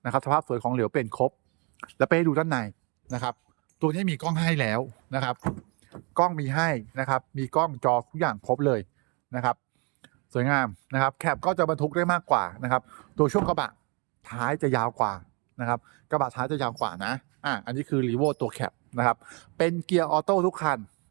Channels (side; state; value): left; quieter; 32.5 dB